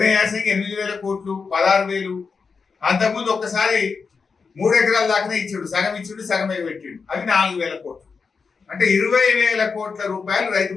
యాసంగి 8,000 కోట్లు, 16,000. అంతకుముందు ఒక్కసారి 3 ఎకరాల దాకానే ఇచ్చాడు, సగం ఇచ్చాడు, సగం ఎగబెట్టాడు. అవి 4,000 కోట్లు. అంటే 20,000 కోట్ల రూపాయలు రైతు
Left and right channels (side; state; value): right; quieter; 5.1 dB